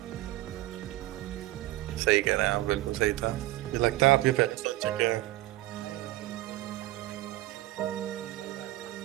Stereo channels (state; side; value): quieter; left; 16.8 dB